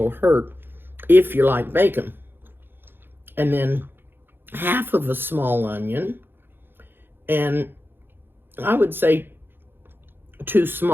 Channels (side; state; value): left; late; 0.10 ms